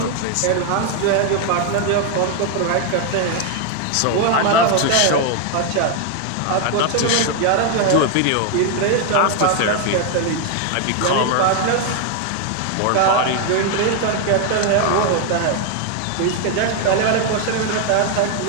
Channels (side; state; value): both; different; correlation 0.01